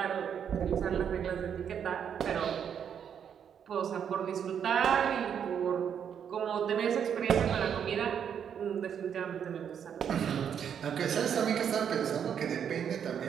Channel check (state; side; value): quieter; left; 8.2 dB